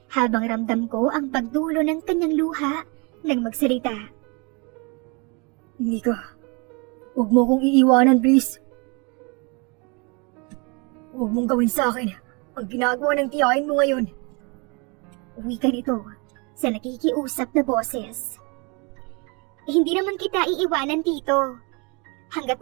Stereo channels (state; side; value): quieter; left; 30.9 dB